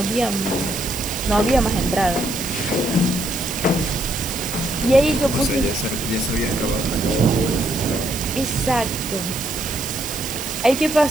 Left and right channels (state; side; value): noise; right; hiss, 8 dB below the sound